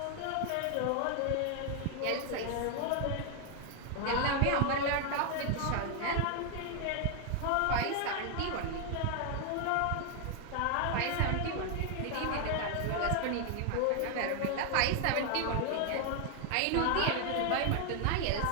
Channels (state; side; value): different; both; correlation 0.00